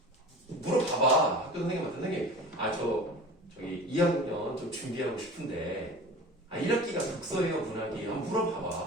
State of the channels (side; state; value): both; normal; correlation 0.37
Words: 물어봐봐. 학교 선생님한테 선생님 저기 2학년 좀 준비하고 싶은데 1학기가 독서예요 문학이에요? 한번